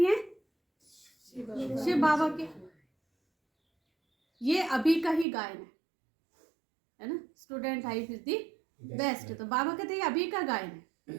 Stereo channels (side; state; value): left; drops out; at 5.2 s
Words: हैं? शिव बाबा के। ये अभी का ही गायन है ना, student life is the best. तो बाबा कहते हैं अभी का गायन